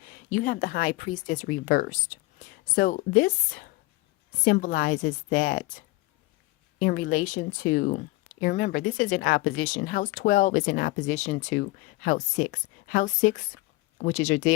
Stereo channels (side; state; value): right; quieter; 21.3 dB